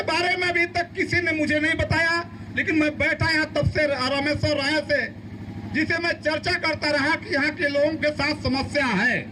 बारे में अभी तक किसी ने मुझे नहीं बताया। लेकिन मैं बैठा यहाँ तब से रामेश्वर राय से, जिसे मैं चर्चा करता रहा कि यहाँ के लोगों के साथ समस्या है,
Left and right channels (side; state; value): both; identical; correlation 1.00